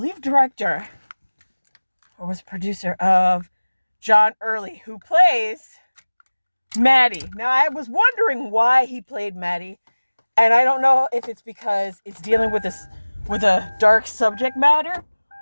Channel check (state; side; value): inverted; both; correlation -1.00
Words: director, or was producer of John Early, who plays Maddie. Now I was wondering why he played Maddie, and I don't know if it's because it's dealing with a dark subject matter.